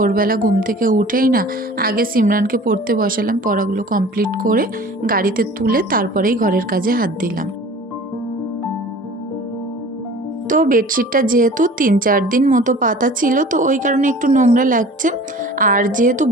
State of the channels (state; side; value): normal; both; correlation 0.44